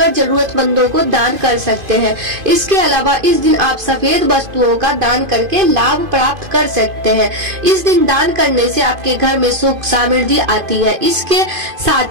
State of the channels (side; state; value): left; late; 2.5 ms